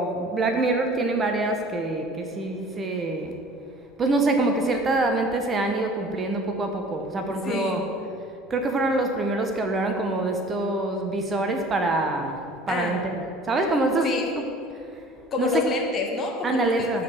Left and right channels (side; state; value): both; normal; correlation 0.47